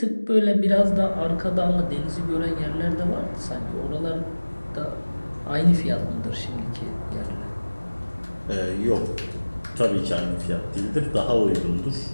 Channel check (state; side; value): inverted; both; correlation -1.00